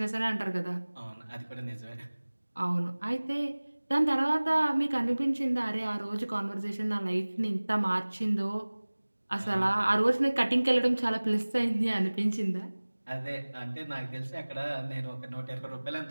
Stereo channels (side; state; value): both; inverted; correlation -1.00